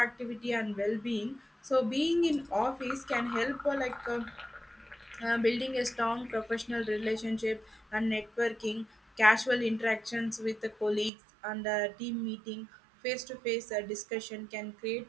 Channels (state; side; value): drops out; left; at 11.1 s